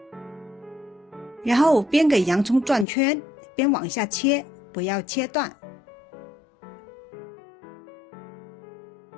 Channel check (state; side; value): drops out; right; at 2.9 s